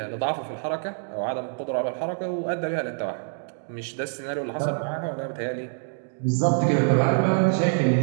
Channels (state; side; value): silent; left; digital silence